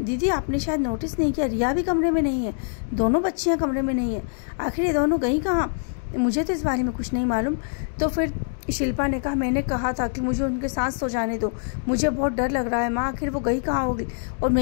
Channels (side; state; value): right; silent; 62 dB below the other